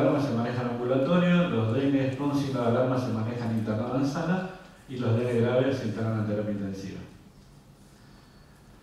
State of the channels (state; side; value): identical; both; correlation 1.00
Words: se manejan ambulatorio, los dengue con signo de alarma se manejan internados en sala y los dengue graves se internan en terapia intensiva.